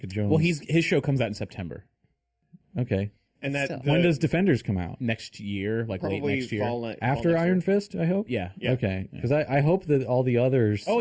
Jones. Well, his show comes out in September okay. And that So- When does Defenders come out? next year, like late probably next year. fall After next Iron year. Fist, I hope. Yeah. Okay, because I hope that all the others. Oh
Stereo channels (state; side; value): identical; both; correlation 1.00